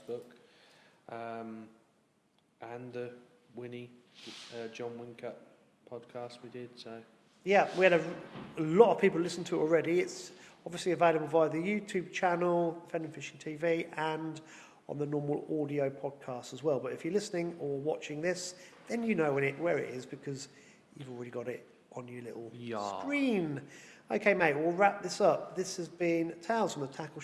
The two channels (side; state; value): both; identical; correlation 1.00